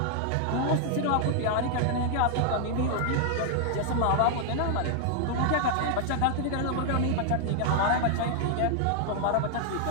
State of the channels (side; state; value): both; different; correlation 0.00